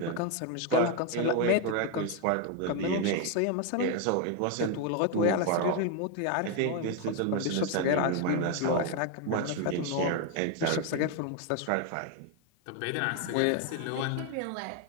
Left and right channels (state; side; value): different; both; correlation 0.01